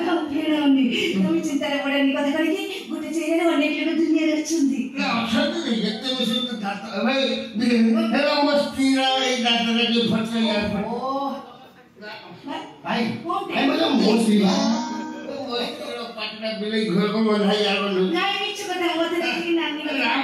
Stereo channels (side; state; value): both; identical; correlation 1.00